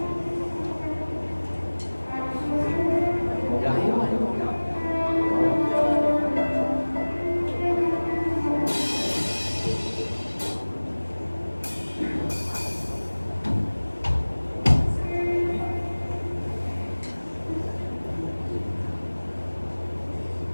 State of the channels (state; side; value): inverted; both; correlation -1.00